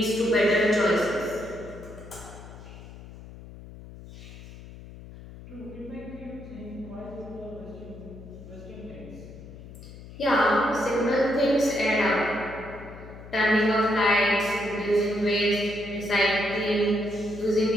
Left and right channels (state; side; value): noise; left; hum, 16 dB below the sound